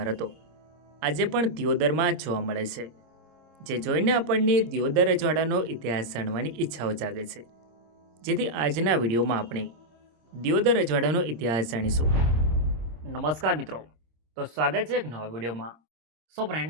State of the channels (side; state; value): left; late; 26 ms